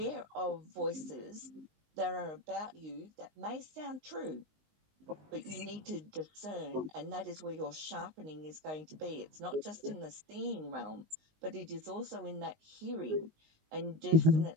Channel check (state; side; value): late; left; 19 ms